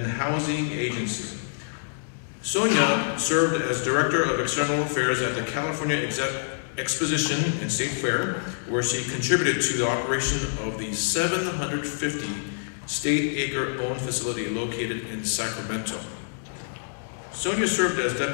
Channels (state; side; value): silent; right; digital silence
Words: the Housing Agency. Sonia served as Director of External Affairs at the California Exposition and State Fair, where she contributed to the operation of the 750 state acre-owned facility located in Sacramento. Sonia served as